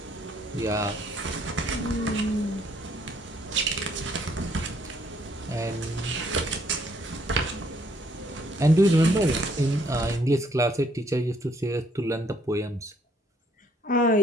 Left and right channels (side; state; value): both; normal; correlation 0.66